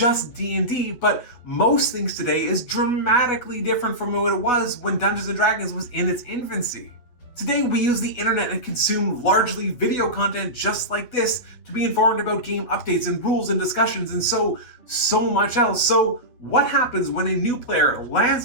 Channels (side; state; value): right; late; 8.5 ms